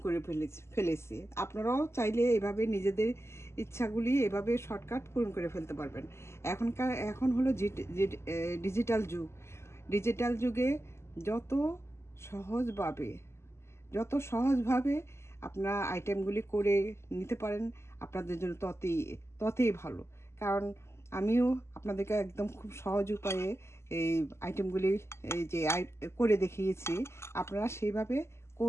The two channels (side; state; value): right; late; 0.13 ms